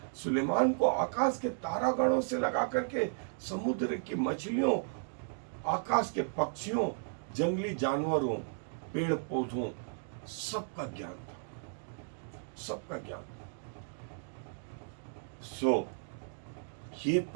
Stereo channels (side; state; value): left; silent; digital silence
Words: सुलेमान को आकाश के तारागणों से लगा करके समुद्र की मछलियों, आकाश के पक्षियों, जंगली जानवरों, पेड़ पौधों, सबका ज्ञान था, सबका ज्ञान। सो ये